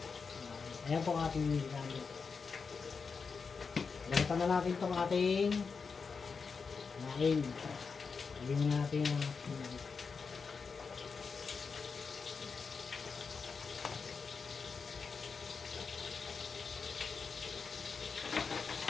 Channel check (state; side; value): quieter; right; 5.2 dB